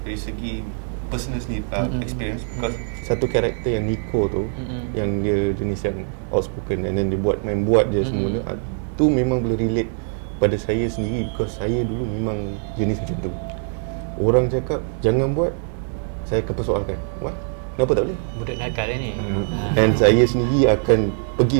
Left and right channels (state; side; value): silent; left; 64 dB below the other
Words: dari segi personal experience, because satu karakter yang Nico tu, yang dia jenis yang outspoken, and then dia main buat je semua tu memang boleh relate pada saya sendiri, because saya dulu memang jenis macam tu. Orang cakap jangan buat, saya akan persoalkan, what? Kenapa tak boleh? Budak nakal ni. And saya sendiri akan